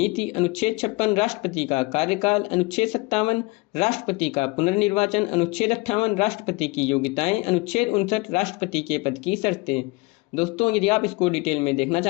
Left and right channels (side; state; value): right; quieter; 24.5 dB